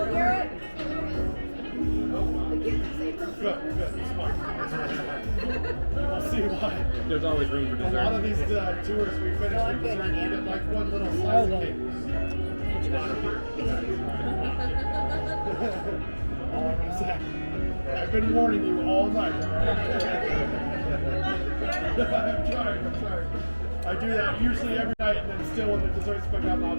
Garrett? Good, smart. We'll see why. There's always room for A dessert. lot of these tours we finish with dessert, you get like one little slice of cake. Not a beer. All I'm gonna say. I've been warning you all night. All right? I'm trying. I do that usually every night, and then still when the desserts pick up, I'll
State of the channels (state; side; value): inverted; both; correlation -1.00